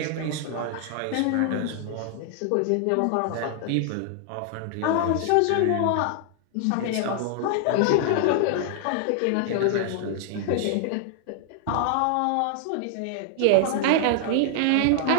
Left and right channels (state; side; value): different; both; correlation -0.01